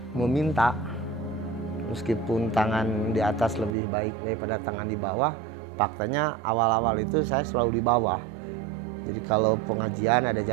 meminta. Meskipun tangan di atas lebih baik daripada tangan di bawah, faktanya awal-awal itu saya selalu di bawah. Jadi kalau pengajian, ada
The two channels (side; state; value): left; drops out; at 3.8 s